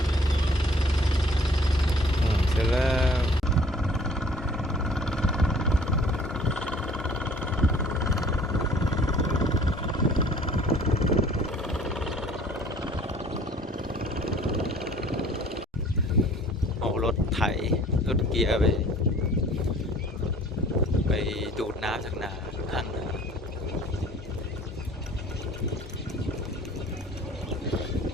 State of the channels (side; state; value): both; normal; correlation 0.53